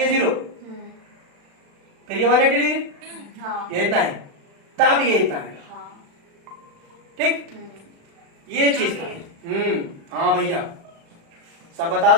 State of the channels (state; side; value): late; left; 36 ms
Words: 0, फिर ये 180 डिग्री, ये इतना है, तब ये इतना है, ठीक? ये चीज था। हाँ भैया सब बता